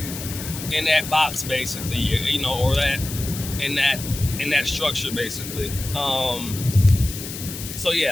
in that box, basically, or that in that structure, basically. So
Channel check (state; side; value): noise; left; hiss, 9 dB below the sound